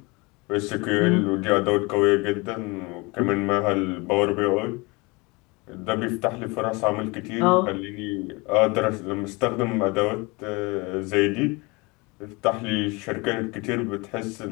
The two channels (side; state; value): right; quieter; 26.2 dB